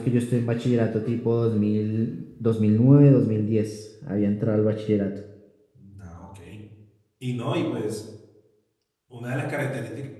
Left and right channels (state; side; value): identical; both; correlation 1.00